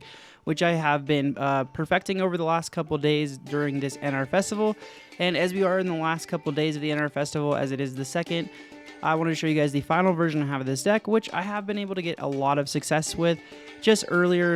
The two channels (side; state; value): both; identical; correlation 1.00